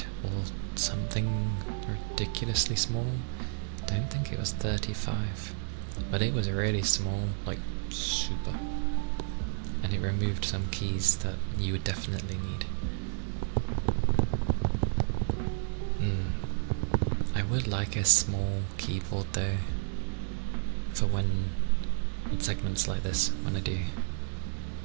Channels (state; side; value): silent; left; digital silence